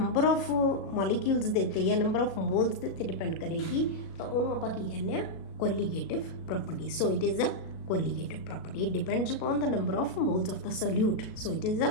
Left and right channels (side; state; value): right; late; 37 ms